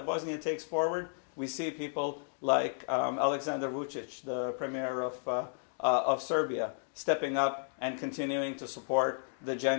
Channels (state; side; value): silent; right; digital silence